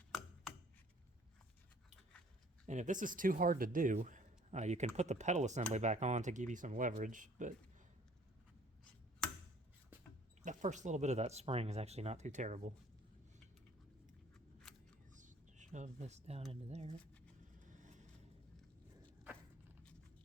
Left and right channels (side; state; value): both; normal; correlation 0.56